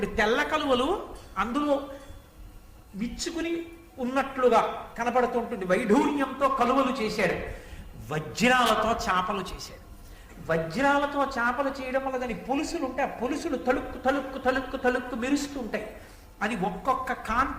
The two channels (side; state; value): both; identical; correlation 1.00